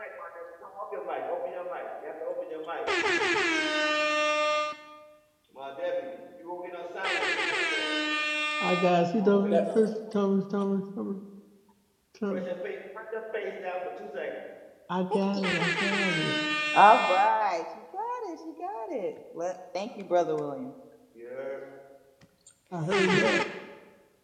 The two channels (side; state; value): both; identical; correlation 1.00